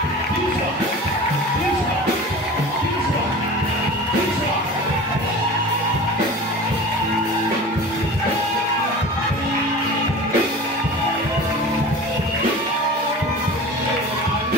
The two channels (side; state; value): both; normal; correlation 0.36